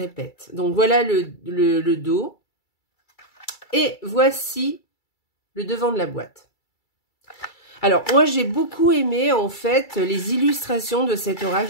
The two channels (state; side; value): late; right; 2.3 ms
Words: Donc, voilà le dos. Et voici le devant de la boîte. Alors, moi, j'ai beaucoup aimé, en fait, les illustrations de cet oracle.